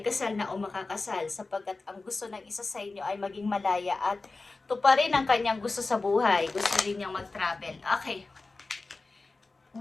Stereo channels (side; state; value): right; quieter; 3.6 dB